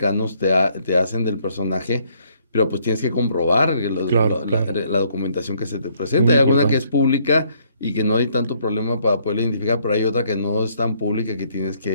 te hacen del personaje, pero pues tienes que comprobar Claro, claro. la documentación que se te presenta. Muy Hay alguna que es importante. pública y que no hay tanto problema para poderla identificar, pero hay otra que no es tan pública, que tienes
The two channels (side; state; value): both; inverted; correlation -0.67